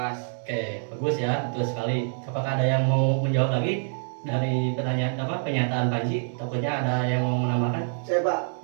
Oke, bagus ya, betul sekali. Apakah ada yang mau menjawab lagi dari pertanyaan pernyataan Panji? Takutnya ada yang mau menambahkan? Saya, Pak.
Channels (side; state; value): left; silent; digital silence